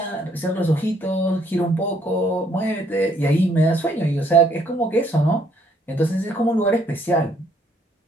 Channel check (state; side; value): normal; both; correlation 0.67